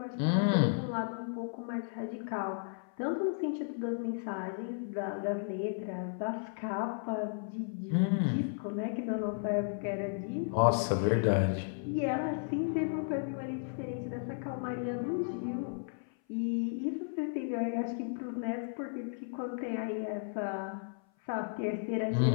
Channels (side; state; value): right; silent; 55 dB below the other